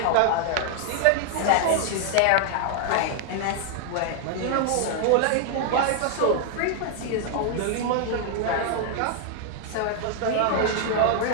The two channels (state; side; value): different; both; correlation 0.00